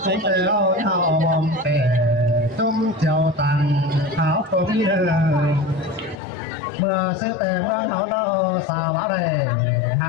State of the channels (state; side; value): drops out; right; at 6.2 s